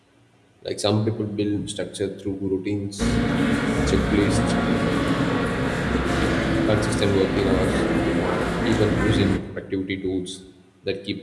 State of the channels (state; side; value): identical; both; correlation 1.00